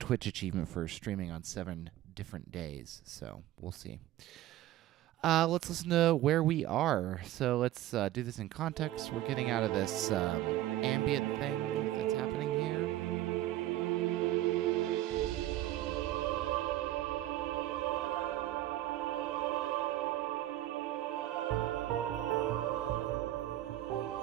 achievement for streaming on 7 different days, so we'll see. Let's listen to where we are. So let's do this in context. We're getting out of this ambient thing that's happening here.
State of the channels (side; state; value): left; quieter; 14.5 dB